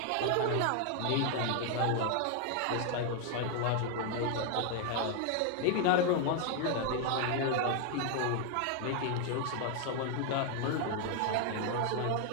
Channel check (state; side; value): different; both; correlation 0.00